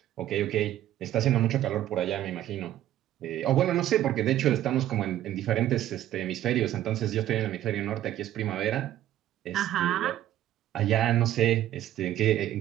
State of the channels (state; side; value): quieter; left; 12.8 dB